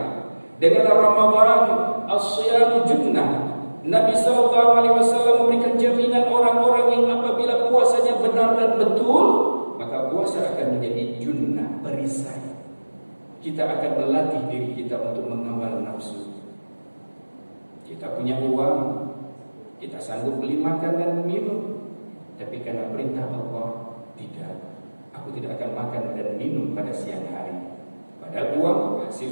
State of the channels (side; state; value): both; inverted; correlation -1.00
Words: dengan Ramadan, as-siyam junnah. Nabi SAW memberikan jaminan orang-orang yang apabila puasanya benar dan betul, maka puasa akan menjadi junnah, perisai. Kita akan melatih diri kita untuk mengawal nafsu. Kita punya uang, kita sanggup beli makan dan minum, tapi karena perintah Allah, tidak. Aku tidak akan makan dan minum pada siang hari. Padahal uang